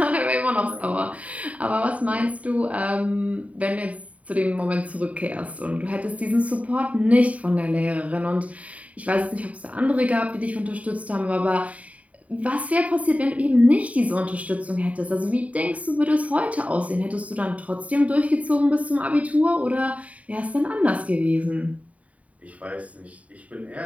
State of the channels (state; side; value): late; left; 0.068 ms